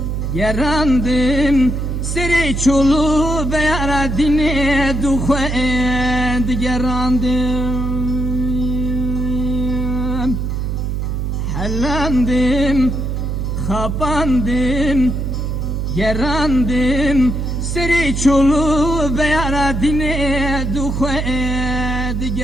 gerandım seri çolu beyara dine duxendi gerandım حلاندم خاباندم gerandım seri çolu beyara dine duxendi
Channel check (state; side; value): noise; right; hum, 1 dB below the sound